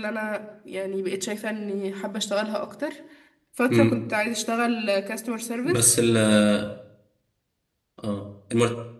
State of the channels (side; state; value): both; identical; correlation 1.00